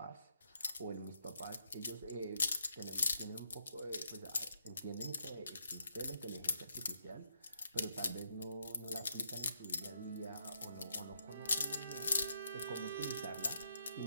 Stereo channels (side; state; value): both; inverted; correlation -0.75